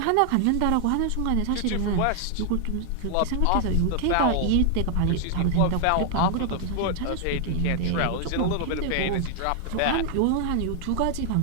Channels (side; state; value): both; different; correlation 0.00